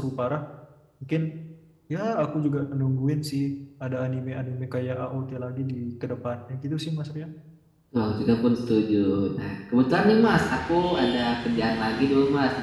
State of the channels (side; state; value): both; identical; correlation 1.00